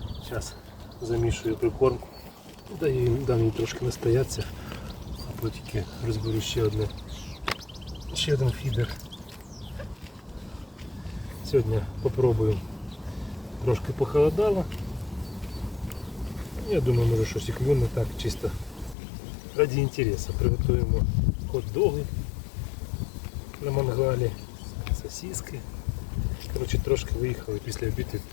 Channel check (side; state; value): right; drops out; at 18.9 s